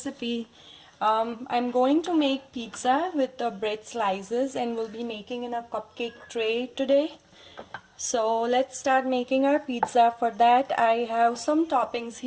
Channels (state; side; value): identical; both; correlation 1.00